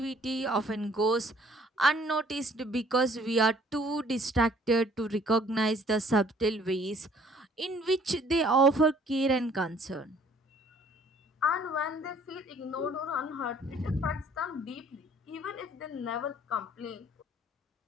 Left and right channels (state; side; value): normal; both; correlation 0.58